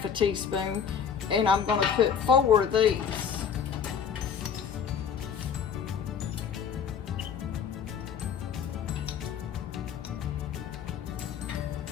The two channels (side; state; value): right; quieter; 7.4 dB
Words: teaspoon, and I'm going to put 4 of these.